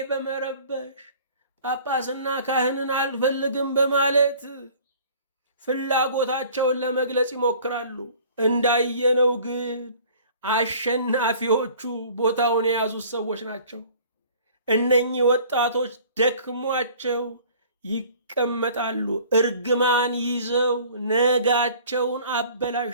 በመረበሽ ጳጳስና ካህንን አልፈልግም በማለት ፍላጎታቸውን ለመግለጽ ይሞክራሉ። እንዳየነው ግን አሸናፊዎቹ ቦታውን የያዙት ሰዎች ናቸው። እነኚህ ወጣቶች ደክሟቸው ይቀመጣሉ። እርግማን ይዘው ነጋቸውን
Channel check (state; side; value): inverted; both; correlation -0.50